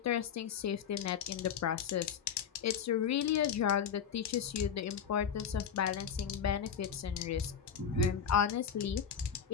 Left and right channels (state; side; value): quieter; right; 7.7 dB